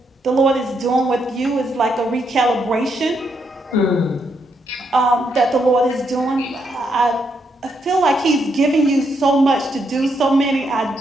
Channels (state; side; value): normal; both; correlation 0.78